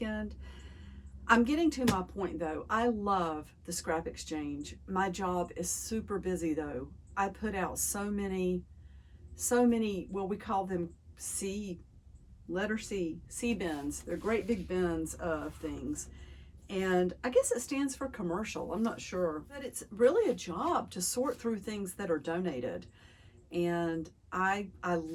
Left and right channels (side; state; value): both; identical; correlation 1.00